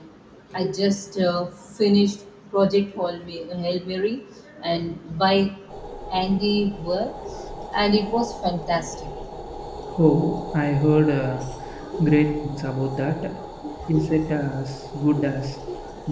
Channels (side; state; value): both; identical; correlation 1.00